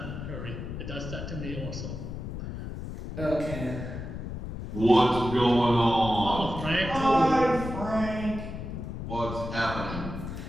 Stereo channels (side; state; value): left; noise; rumble, 7 dB below the sound